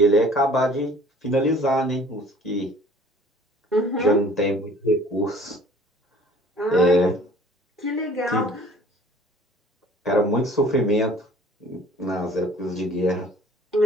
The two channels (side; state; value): both; normal; correlation 0.51